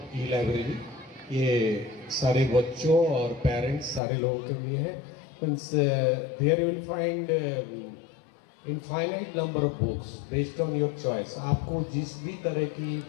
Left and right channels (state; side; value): drops out; right; at 4.0 s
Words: ई लाइब्रेरी ये सारे बच्चों और पेरेंट्स सारे लोगों के लिए है। Means there you will find infinite number of books based on your choice. आपको जिस भी तरह की